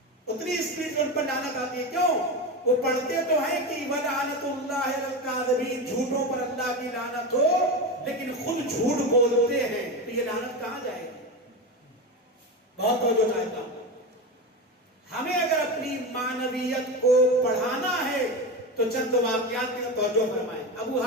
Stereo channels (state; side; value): normal; both; correlation 0.20